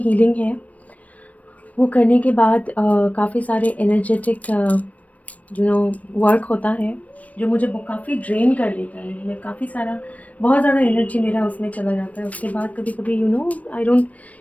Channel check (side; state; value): right; late; 0.068 ms